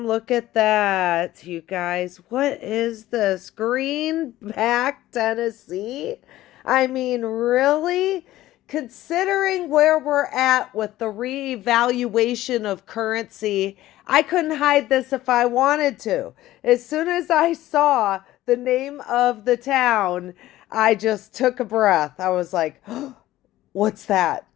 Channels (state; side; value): quieter; right; 15.3 dB